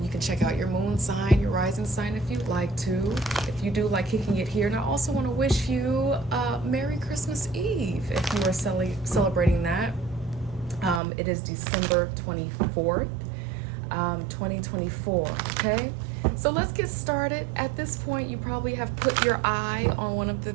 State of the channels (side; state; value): left; drops out; at 11.0 s